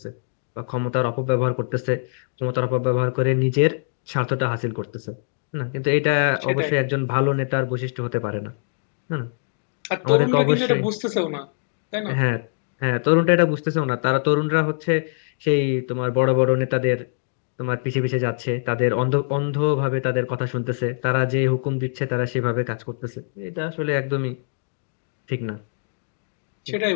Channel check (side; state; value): right; silent; digital silence